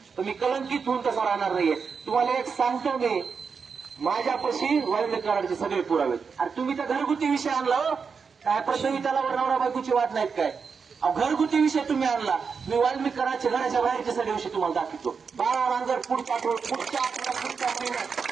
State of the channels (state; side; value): quieter; left; 5.6 dB